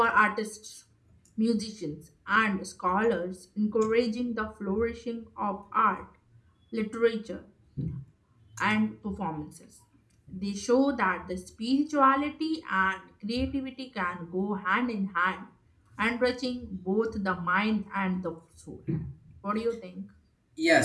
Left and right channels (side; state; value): both; identical; correlation 1.00